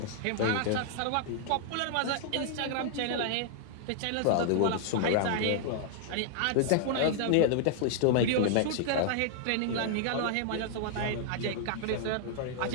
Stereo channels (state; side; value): different; both; correlation -0.01